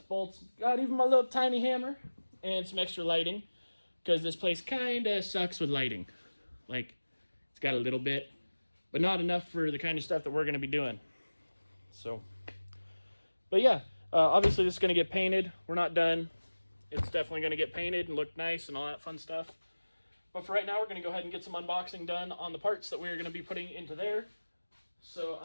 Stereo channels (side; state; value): both; inverted; correlation -1.00